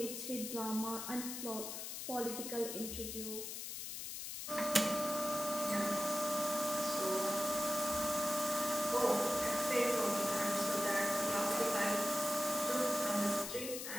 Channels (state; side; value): noise; left; hiss, 6 dB below the sound